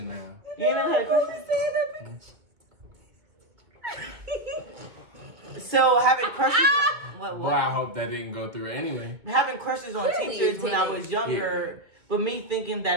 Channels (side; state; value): left; late; 2.0 ms